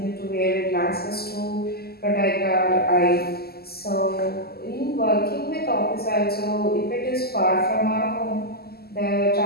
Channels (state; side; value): late; right; 0.46 ms